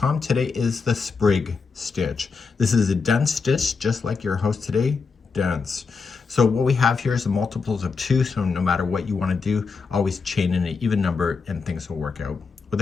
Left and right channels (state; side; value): quieter; right; 4.9 dB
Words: Today is the Sprig Stitch. This is a dense stitch, just like your host today, dense. So what we have here is the multiples of 2, so no matter what you want to do, always chain in an even number and things will work out.